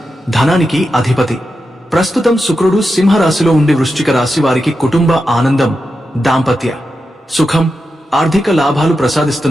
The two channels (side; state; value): both; normal; correlation 0.89